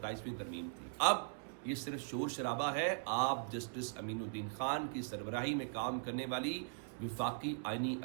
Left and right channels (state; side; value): silent; left; 51 dB below the other